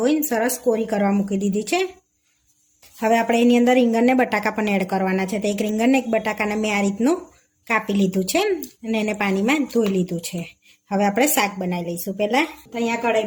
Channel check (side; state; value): both; identical; correlation 1.00